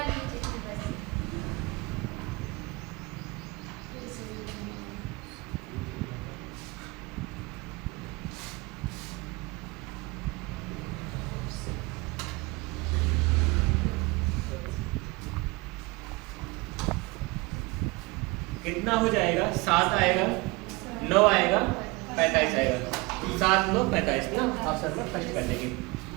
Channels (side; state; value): left; quieter; 24.8 dB